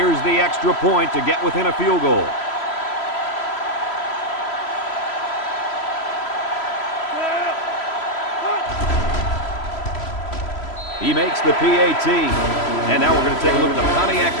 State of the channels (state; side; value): late; right; 3.0 ms